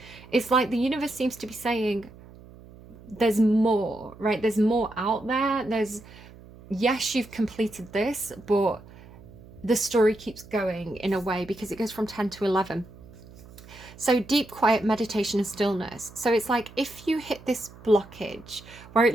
It's like the universe seems to be saying, there's more, right? There's more out there. Yes, you've completed this, but the story keeps going in a way, because it goes from 10 to 11. So deep, quiet meditation and stillness. So it's like if you hit this blockage where it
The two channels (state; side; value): noise; right; hum, 20 dB below the sound